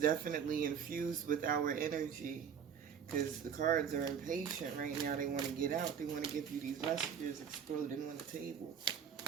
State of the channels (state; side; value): quieter; left; 7.7 dB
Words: infused with our energy, because the cards are impatient right now. They want to get out. They want to give you these messages exploding on the table.